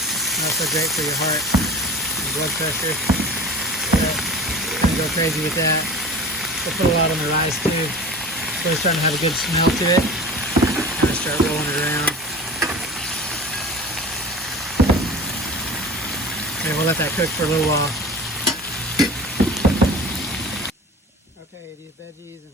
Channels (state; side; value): normal; both; correlation 0.37